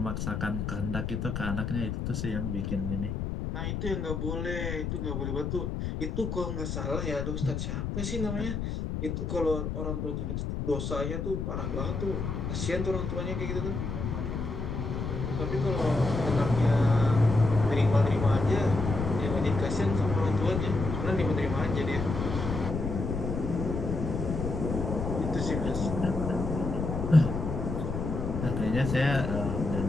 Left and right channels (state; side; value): noise; left; rumble, 3 dB below the sound